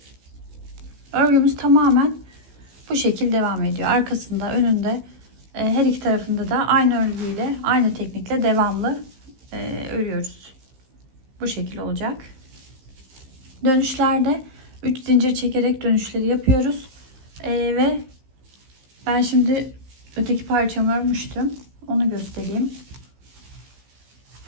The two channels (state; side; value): late; left; 15 ms